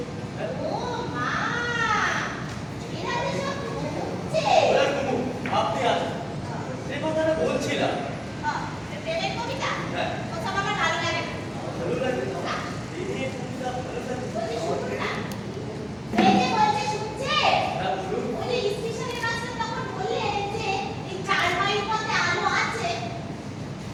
হ্যাঁ? ও মা, এরা যে সব ঘুমছে। ওরা ঘুমুক, আপনি আসুন। যে কথাটা বলছিলাম, প্রেমের কবিতা হ্যাঁ। ওসব আমার ভালো লাগে না। ভালো লাগে না? এই নিয়ে কবিতা ভালো লাগে? বলছি শুনুন না, এই যে বলছে শুনছে, হ্যাঁ, বলুন। ওই যে স্টেশনের মাস্টার তখন বললেন যে এই 4 মাইল পথে আলো আছে।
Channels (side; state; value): both; identical; correlation 1.00